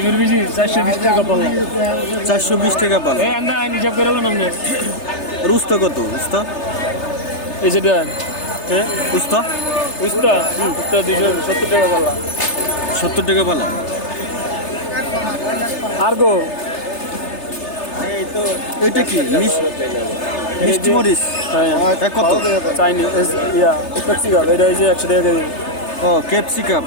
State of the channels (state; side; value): late; right; 3.3 ms